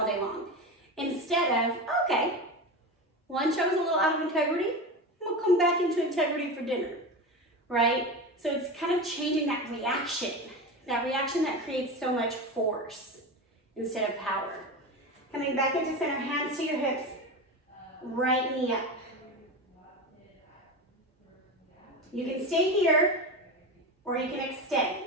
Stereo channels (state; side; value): normal; both; correlation 0.24